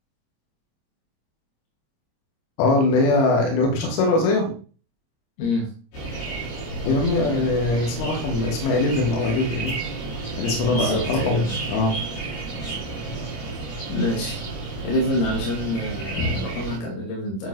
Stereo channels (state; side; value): late; right; 26 ms